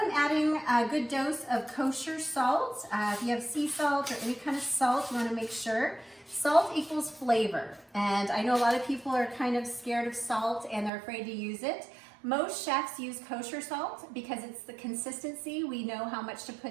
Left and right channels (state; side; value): drops out; left; at 10.9 s